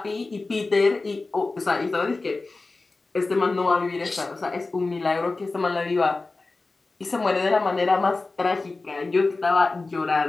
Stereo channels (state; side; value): quieter; right; 3.5 dB